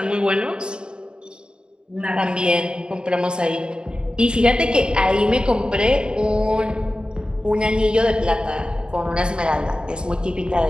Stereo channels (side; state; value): left; late; 0.050 ms